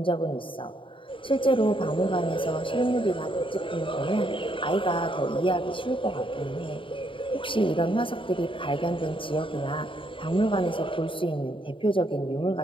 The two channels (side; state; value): right; late; 0.25 ms